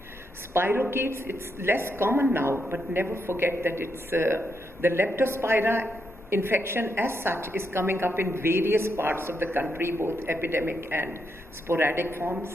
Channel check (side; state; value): both; normal; correlation 0.81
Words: Spirochetes, it's less common now, but never forget that it's the Leptospira infection as such is coming up in various parts of the country, both epidemic and sporadic